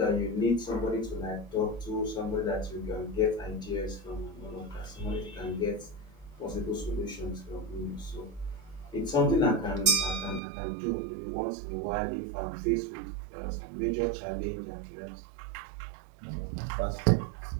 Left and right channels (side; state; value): left; drops out; at 10.4 s